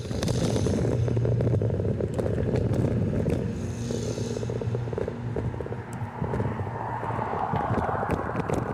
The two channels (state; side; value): identical; both; correlation 1.00